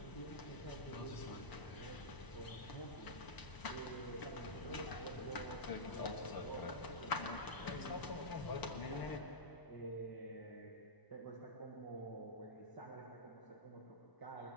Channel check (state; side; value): late; right; 1.0 ms